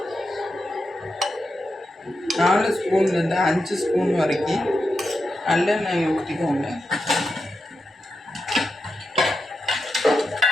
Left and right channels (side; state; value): both; normal; correlation 0.87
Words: 4 ஸ்பூன்லேருந்து 5 ஸ்பூன் வரைக்கும் நல்லெண்ணெய் ஊற்றிக்கோங்க.